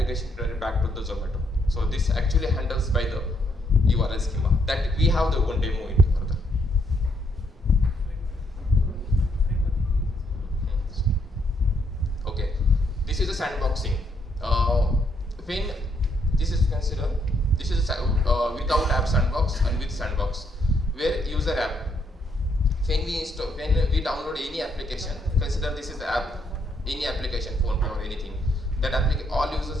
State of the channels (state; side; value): normal; both; correlation 0.73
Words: return back to the Zomato. So this actually handles by the URL schema. That we have the one demo into further. Okay, this is a sandboxing. When this is considered, this is without app sandbox and with sandbox, where user app. When we download any application, consider this is the app, any application, phone or anything. That all